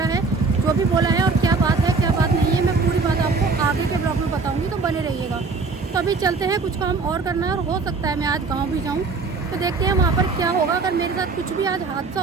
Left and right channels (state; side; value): quieter; left; 4.2 dB